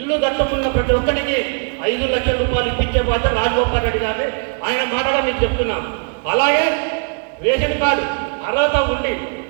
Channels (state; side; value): quieter; left; 39.6 dB